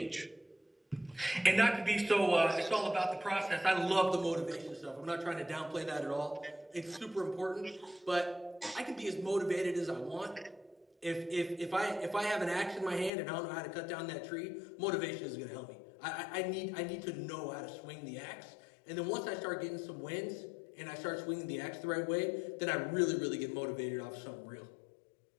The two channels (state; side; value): drops out; right; at 13.1 s